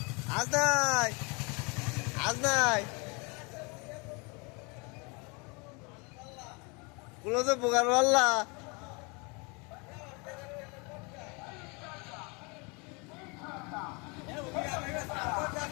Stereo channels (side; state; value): right; quieter; 30.5 dB